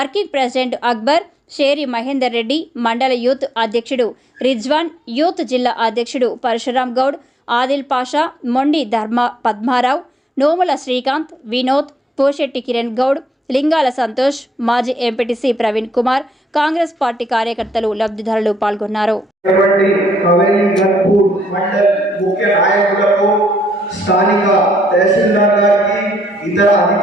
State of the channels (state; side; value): normal; both; correlation 0.75